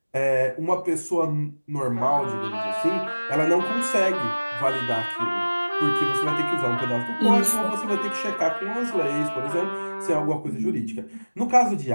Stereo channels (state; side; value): inverted; both; correlation -1.00